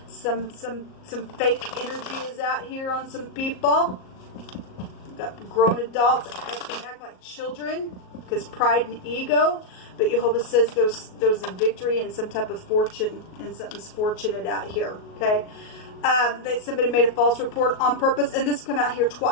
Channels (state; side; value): late; right; 38 ms